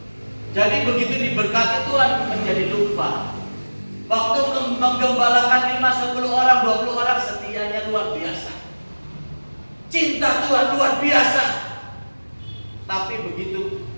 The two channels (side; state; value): both; inverted; correlation -1.00